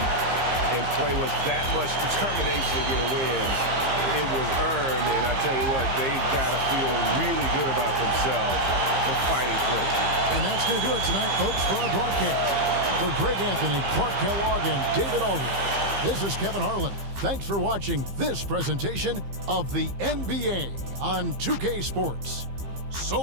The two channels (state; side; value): late; left; 15 ms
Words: and play with that much determination to get a win, it was earned, and I tell you what, they've got to feel really good about themselves for fighting through. And that's going to do it tonight, folks, for our broadcast. For Greg Anthony, Clark Kellogg, and David Aldridge, this is Kevin Harlan. Thanks for watching this presentation of the NBA on 2K Sports. So